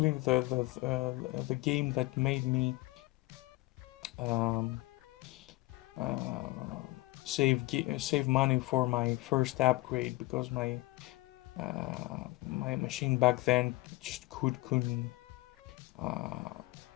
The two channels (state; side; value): quieter; right; 21.0 dB